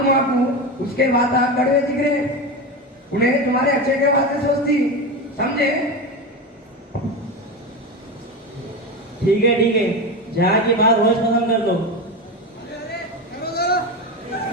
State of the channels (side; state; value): both; normal; correlation 0.20